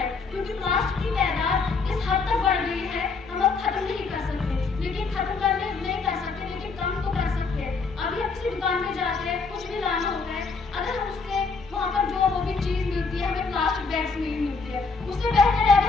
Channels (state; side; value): quieter; right; 4.5 dB